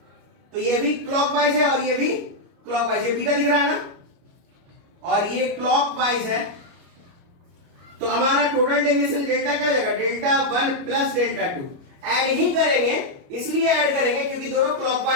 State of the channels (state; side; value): late; left; 29 ms